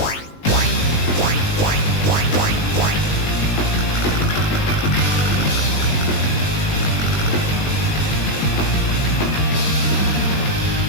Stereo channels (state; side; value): late; right; 19 ms